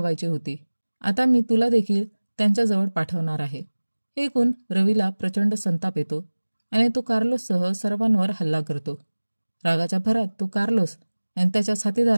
होती. आता मी तुला देखील त्यांच्याजवळ पाठवणार आहे. हे ऐकून रवीला प्रचंड संताप येतो आणि तो कार्लोससह सर्वांवर हल्ला करतो. रागाच्या भरात तो कार्लोस आणि त्याच्या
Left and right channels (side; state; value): both; inverted; correlation -1.00